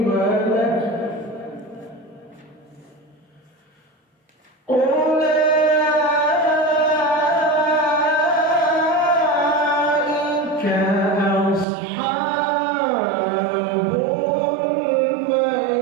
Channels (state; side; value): drops out; left; at 11.7 s